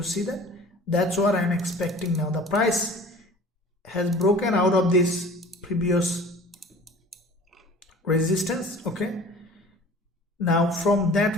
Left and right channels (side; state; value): both; normal; correlation 0.45